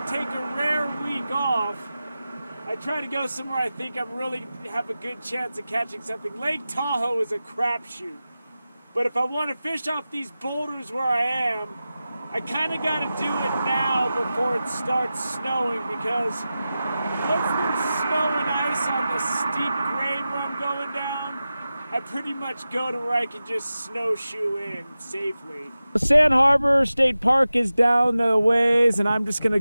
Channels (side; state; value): both; inverted; correlation -0.94